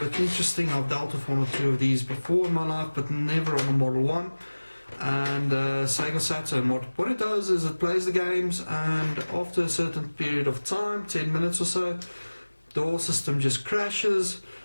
interesting. I've dealt with one or two of these before in my life, but never on a Model 1 and Sega Saturn. What it does is it plays the games, and after a certain period of time, 10 minutes or so, the whole system just crashes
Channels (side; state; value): both; inverted; correlation -1.00